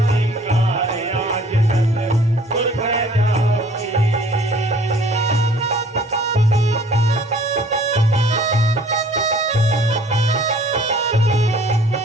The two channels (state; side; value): normal; both; correlation 0.54